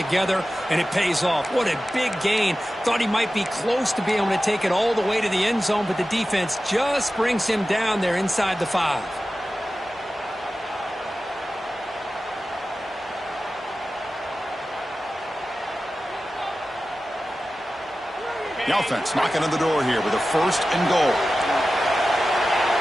and it pays off. What a big gain. Thought he might be close to being able to take it all the way to the end zone, but the defense just brings him down there inside the 5. The offense knocking on the door here with a 1st and goal.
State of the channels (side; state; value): both; normal; correlation 0.94